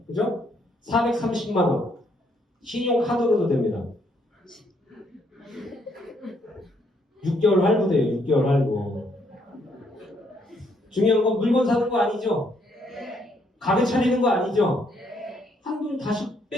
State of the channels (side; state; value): both; normal; correlation 0.71